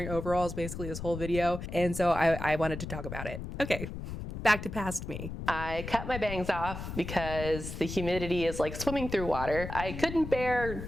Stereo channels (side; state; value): left; noise; rumble, 7 dB below the sound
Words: overalls basically this whole video, and so I wanted to talk about it. Okay, back to past me. I cut my bangs off because the humidity is like swimming through water. I couldn't